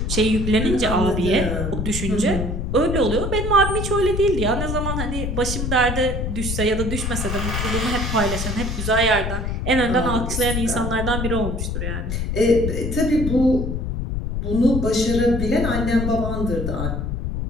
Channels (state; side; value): noise; left; rumble, 2 dB below the sound